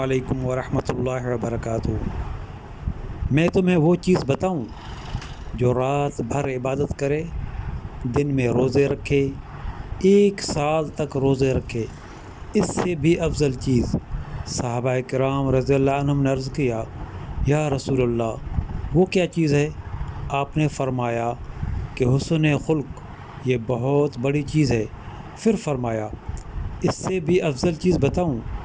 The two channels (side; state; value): both; identical; correlation 1.00